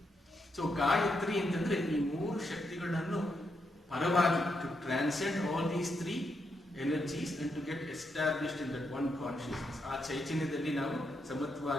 ಸೊ ಗಾಯತ್ರಿ ಅಂತಂದ್ರೆ ಈ 3 ಶಕ್ತಿಗಳನ್ನು ಪರವಾಗಿ to transcend all these 3 energies and to get established in that one consciousness. ಆ ಚೈತನ್ಯದಲ್ಲಿ ನಾವು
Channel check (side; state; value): both; normal; correlation 0.81